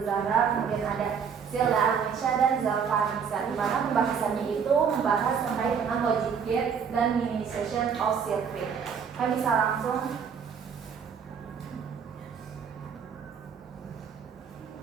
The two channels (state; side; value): quieter; left; 6.8 dB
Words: Zahra, kemudian ada Zilda Arnisha dan Zalfa Nisa, di mana pembahasannya itu membahas terkait dengan logic gate dan minimization of circuit. Kami bisa langsung.